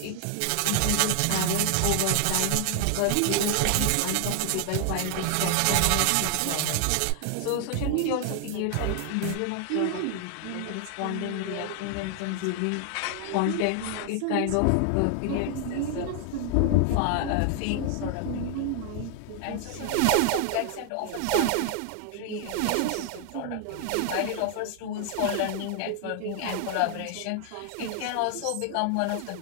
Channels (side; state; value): both; different; correlation 0.00